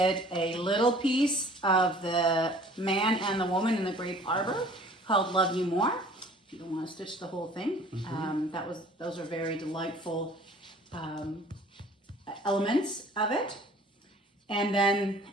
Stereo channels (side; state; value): both; normal; correlation 0.51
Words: a little piece of the man and the woman in the grape arbor called Love You More. If you don't want to stitch the whole thing, those are very delightful elements of it. And then,